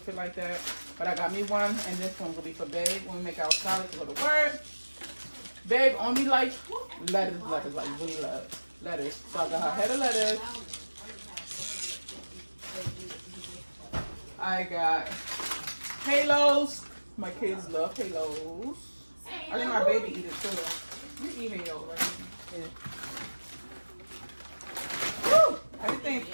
it like that. But I got me one, and this one will be for Babe when we make our salad to go to work. Babe only like lettuce, like really love lettuce. So I got her head of lettuce. I got halos. My kids love halos. I think my baby eat it too. You eat halo, right? Yeah. Woo! Everything's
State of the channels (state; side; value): inverted; both; correlation -1.00